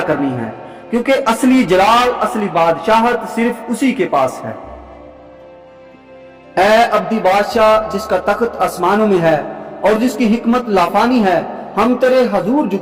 کرنی ہے، کیونکہ اصلی جلال، اصلی بادشاہت صرف اسی کے پاس ہے۔ اے ابدی بادشاہ جس کا تخت آسمانوں میں ہے اور جس کی حکمت لافانی ہے، ہم تیرے حضور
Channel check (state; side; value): identical; both; correlation 1.00